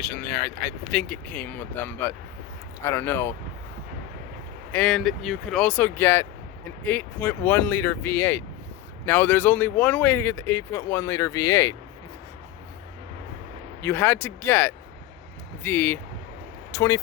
there. I think it came with them, but I don't know. And you could also get an 8.1 liter V8. Now there's only one way to get the 8.1 liter V8. You had to get the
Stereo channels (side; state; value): right; quieter; 13.8 dB